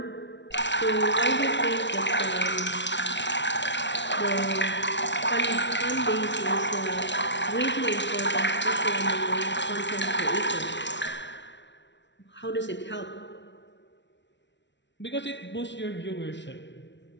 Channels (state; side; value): late; right; 0.52 ms